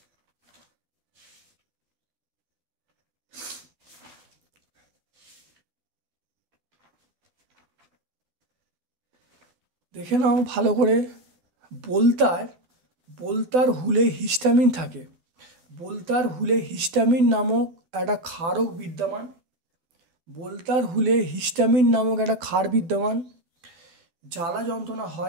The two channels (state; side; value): late; left; 12 ms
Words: দেখে নাও ভালো করে। বলতার হুলে হিস্টামিন থাকে। বলতার হুলে হিস্টামিন নামক একটা ক্ষারক বিদ্যমান। বলতার হুলে হিস্টামিন নামক একটা ক্ষার বিদ্যমান। জ্বালা যন্ত্রণা